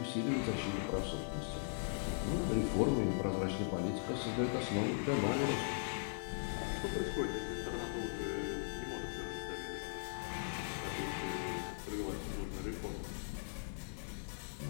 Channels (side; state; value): right; silent; digital silence